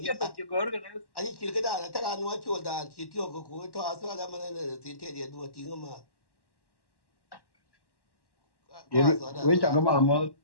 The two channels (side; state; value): right; late; 1.1 ms